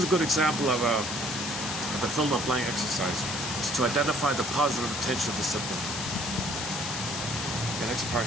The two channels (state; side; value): noise; left; hiss, 4 dB below the sound